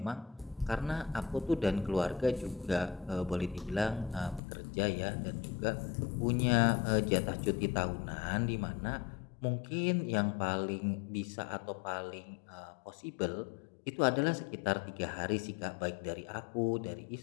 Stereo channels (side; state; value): right; drops out; at 4.4 s